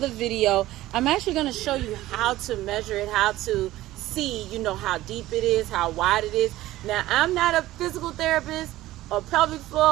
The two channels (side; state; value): left; quieter; 16.0 dB